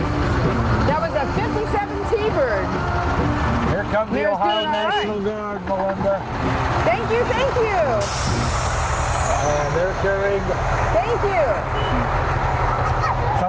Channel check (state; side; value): identical; both; correlation 1.00